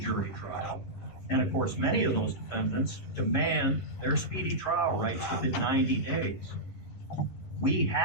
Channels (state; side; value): late; right; 11 ms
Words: jury trial. And of course, many of those defendants demand their speedy trial rights within 90 days. We